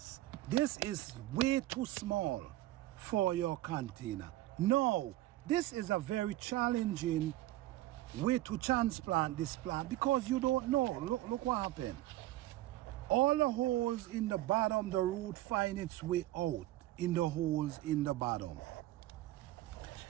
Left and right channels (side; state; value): left; quieter; 16.1 dB